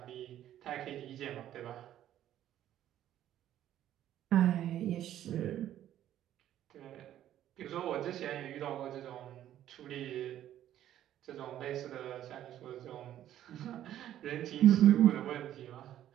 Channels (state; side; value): quieter; left; 11.9 dB